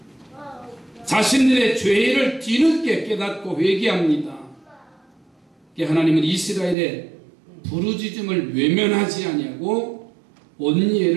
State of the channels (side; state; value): left; drops out; at 6.8 s